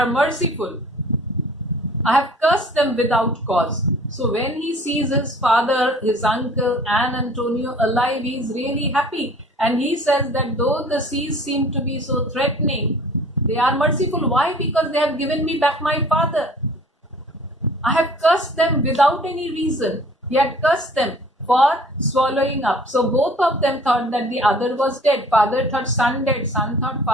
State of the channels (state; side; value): normal; both; correlation 0.50